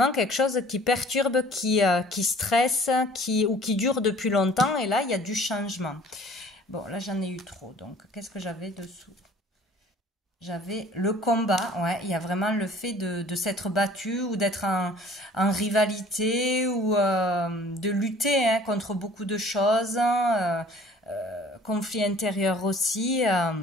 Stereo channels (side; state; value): both; normal; correlation 0.51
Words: quelque chose qui perturbe, qui stresse, ou qui dure depuis longtemps. Et là, il y a du changement. Bon, là, j'en ai eu trop. Donc, qu'est-ce que j'avais dessous? J'avais le combat. Ouais, il y a vraiment le fait de s'être battu ou d'être en rivalité ou de lutter contre beaucoup de choses. Conflit intérieur aussi,